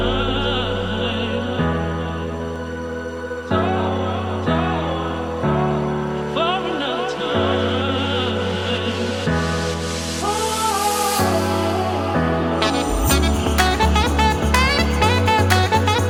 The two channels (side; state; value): both; identical; correlation 1.00